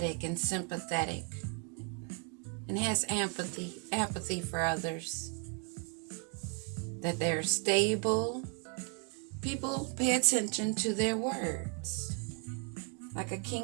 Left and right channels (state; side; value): quieter; left; 32.9 dB